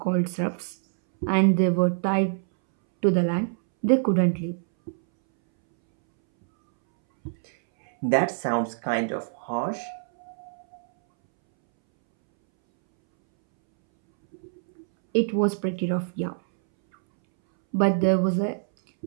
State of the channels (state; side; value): silent; left; 62 dB below the other